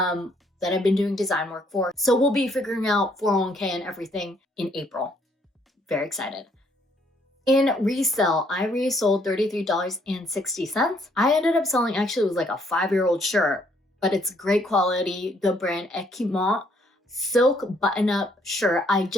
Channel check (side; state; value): both; normal; correlation 0.67